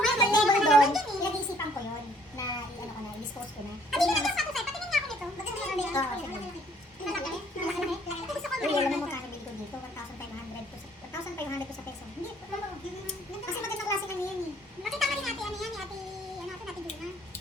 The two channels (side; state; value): both; normal; correlation 0.61